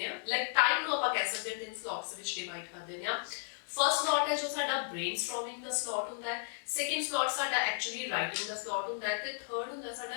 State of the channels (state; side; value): silent; right; digital silence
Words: ਆ। ਲਾਈਕ ਟਾਈਮ ਨੂੰ ਆਪਾਂ ਕਹਿ ਸਕਦੇ ਹਾਂ 3 ਸਲੋਟਸ ਦੇ ਵਿੱਚ ਡਿਵਾਈਡ ਕਰ ਦਿੰਦੇ ਆ। ਫਰਸਟ ਸਲੋਟ ਹੈ ਜੋ ਸਾਡਾ ਬ੍ਰੇਨਸਟੋਰਮਿੰਗ ਦਾ ਸਲੋਟ ਹੁੰਦਾ ਹੈ। ਸੈਕੰਡ ਸਲੋਟ ਸਾਡਾ ਐਕਚੁਅਲੀ ਰਾਈਟਿੰਗ ਦਾ ਸਲੋਟ ਹੁੰਦਾ ਹੈ ਤੇ ਥਰਡ ਹੁੰਦਾ